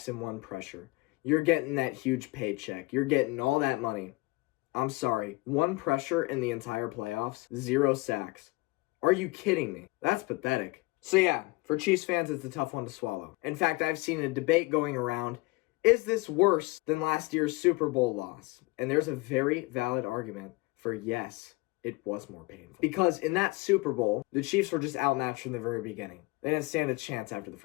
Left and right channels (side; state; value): right; quieter; 23.7 dB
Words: and 1 pressure. You're getting that huge paycheck. You're getting all that money. I'm sorry. 1 pressure in the entire playoffs, 0 sacks. Are you kidding me? That's pathetic. So yeah, for Chiefs fans, it's a tough one to swallow. In fact, I've seen a debate going around, is this worse than last year's Super Bowl loss? And there's a very valid argument for yes, it was more painful. Because in that Super Bowl, the Chiefs were just outmatched from the very beginning. They didn't stand a chance after the